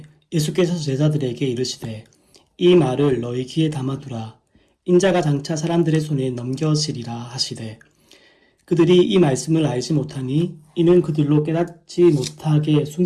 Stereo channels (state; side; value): identical; both; correlation 1.00